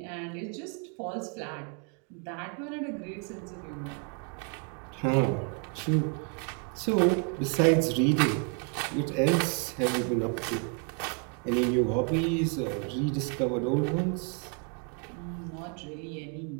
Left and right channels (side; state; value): left; quieter; 39.5 dB